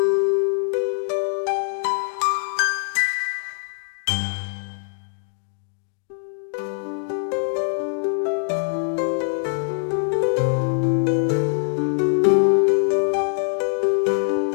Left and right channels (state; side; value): silent; right; digital silence